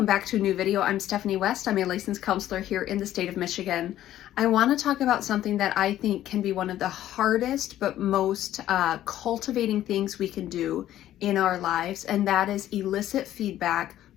back to a new video. I'm Stephanie West. I'm a licensed counselor here in the state of Michigan. I want to talk about something that I think can be one of the hardest but most cultivating things we can do in our lives, and that is elicit feedback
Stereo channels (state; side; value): quieter; right; 12.8 dB